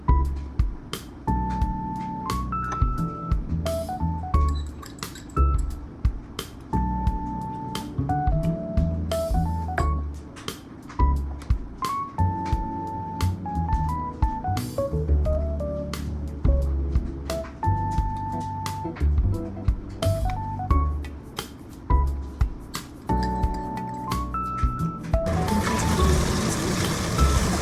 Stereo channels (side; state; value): both; identical; correlation 1.00